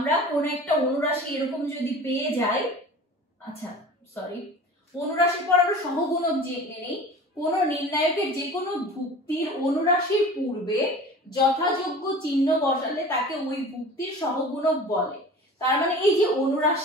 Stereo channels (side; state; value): both; normal; correlation 0.39